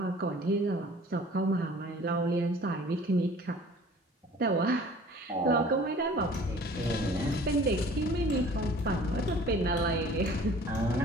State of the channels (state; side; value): normal; both; correlation 0.49